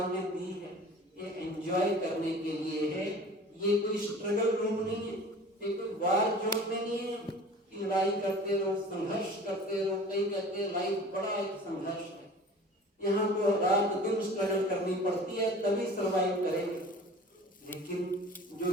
ने दी है, ये एंजॉय करने के लिए है। ये कोई स्ट्रगल रूम नहीं है, ये कोई वार जोन में नहीं है। लड़ाई करते रहो, संघर्ष करते रहो। कई कहते हैं लाइफ बड़ा एक संघर्ष है, यहाँ को रात दिन स्ट्रगल करनी पड़ती है तभी सरवाइव करेंगे। लेकिन जो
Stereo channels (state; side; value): normal; both; correlation 0.43